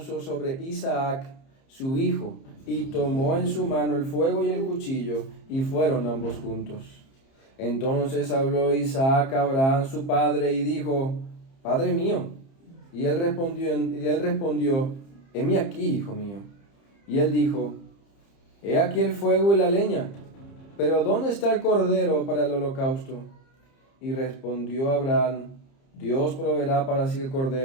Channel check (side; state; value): right; late; 30 ms